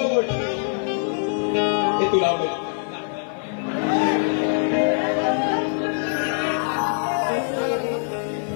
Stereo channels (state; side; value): silent; right; 58 dB below the other